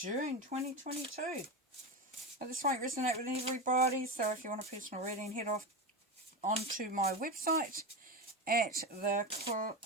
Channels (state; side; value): normal; both; correlation 0.19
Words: 2022. Now, this won't resonate with everybody, so if you want a personal reading, head off onto my website at